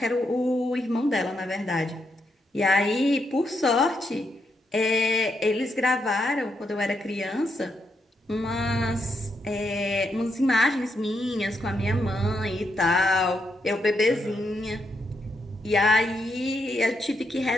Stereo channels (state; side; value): normal; both; correlation 0.80